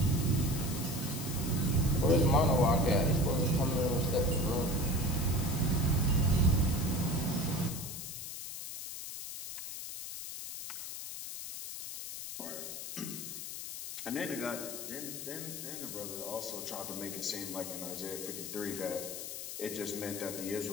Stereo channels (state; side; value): noise; left; hiss, 7 dB below the sound